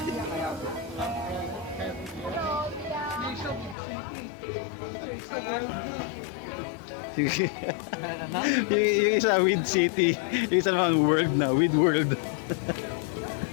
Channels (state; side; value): drops out; right; at 3.8 s